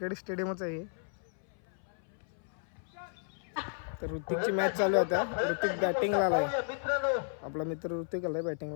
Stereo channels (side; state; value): right; silent; 55 dB below the other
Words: स्टेडियमच आहे. तर ऋतिकची मॅच चालू आहे आता. ऋतिक बॅटिंगला आलाय, आपला मित्र ऋतिक आलाय